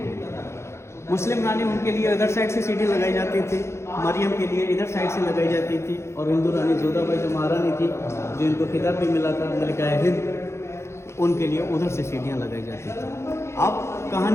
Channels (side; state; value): right; late; 0.13 ms